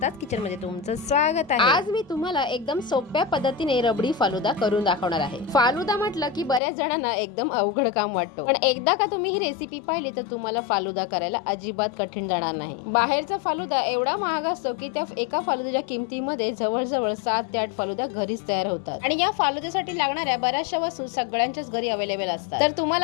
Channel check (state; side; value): drops out; right; at 6.6 s